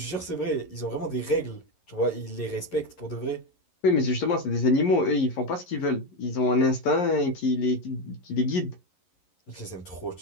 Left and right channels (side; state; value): right; late; 11 ms